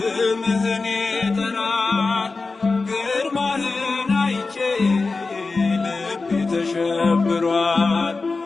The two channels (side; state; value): right; quieter; 3.9 dB